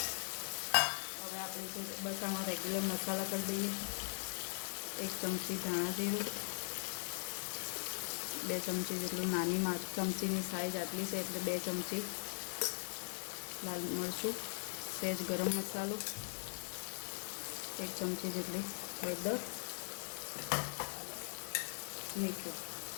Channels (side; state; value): right; silent; digital silence